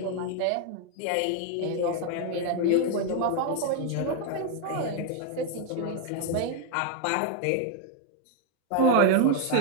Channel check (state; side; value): different; both; correlation 0.01